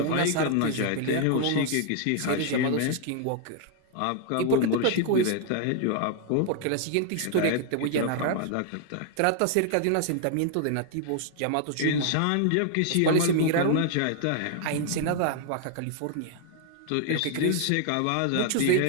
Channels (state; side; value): different; both; correlation 0.00